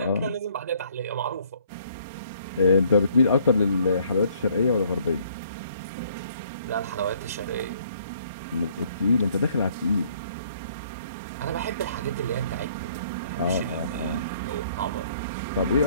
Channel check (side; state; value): both; inverted; correlation -0.62